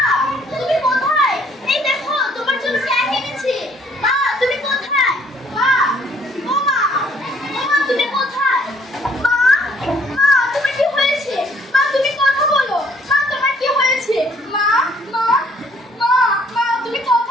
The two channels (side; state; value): both; normal; correlation 0.62